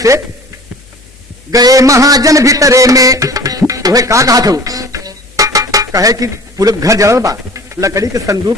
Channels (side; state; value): both; normal; correlation 0.44